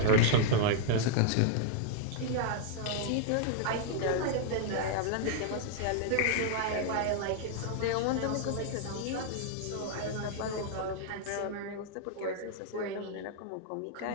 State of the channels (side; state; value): both; different; correlation -0.01